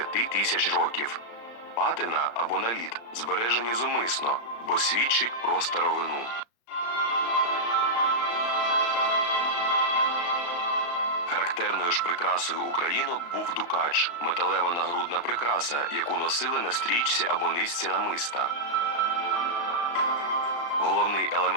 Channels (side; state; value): right; late; 35 ms